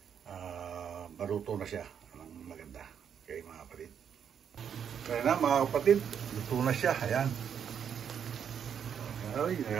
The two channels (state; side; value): quieter; left; 8.0 dB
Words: maluto na siya ng maganda. Okay mga kapatid. Kaya na mga kapatid, luto na siya. Ayan. Ay,